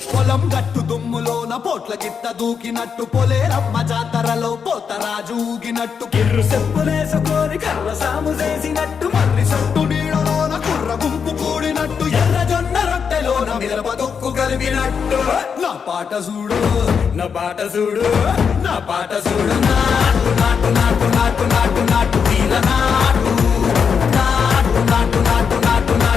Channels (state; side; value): quieter; right; 6.5 dB